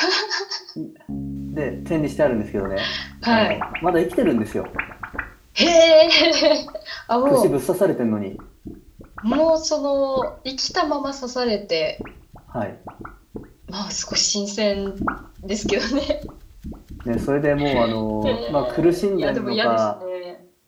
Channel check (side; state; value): both; identical; correlation 1.00